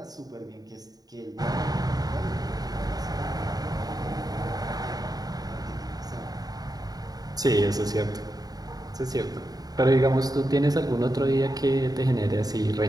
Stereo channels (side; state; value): left; late; 0.18 ms